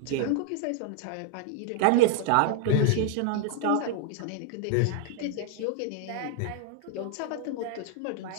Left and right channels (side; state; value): both; different; correlation 0.00